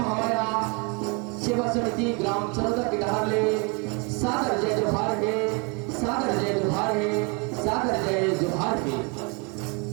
सेवा समिति ग्राम चरौदा के डहार ले सादर जय जोहार है, सादर जय जोहार है, सादर जय जोहार है।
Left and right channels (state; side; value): quieter; left; 32.3 dB